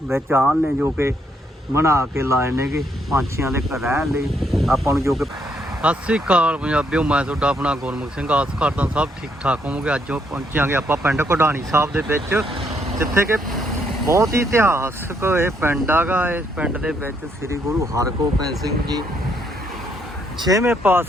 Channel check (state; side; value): normal; both; correlation 0.73